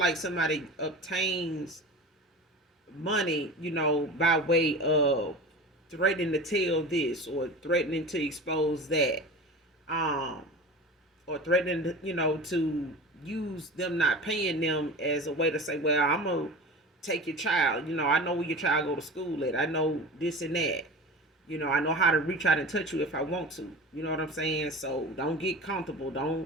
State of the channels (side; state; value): both; normal; correlation 0.33